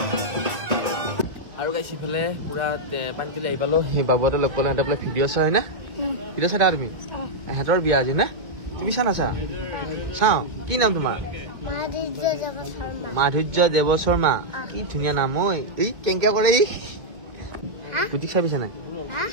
আৰু গাইছ ইফালে পুৰা পানী তুলি আহি পালো সেই বাবুহঁতে লগ পালো সিহঁতে বোলে ভিডিঅ' চাই হয় না ভিডিঅ' চাই তুমি সিহঁতৰ বিয়া আজি না তুমি চা নাচা চাওঁ কি নাম তোমাৰ মাধুৰ্য দেৱ শৰ্মা কি ধুনীয়া নাম ঐ এই কেংকে কৰে ই গুটিক চাবিছে নাই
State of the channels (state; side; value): late; left; 2.1 ms